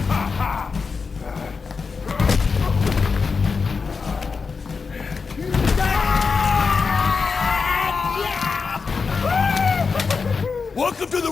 Welcome to the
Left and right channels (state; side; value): quieter; right; 5.0 dB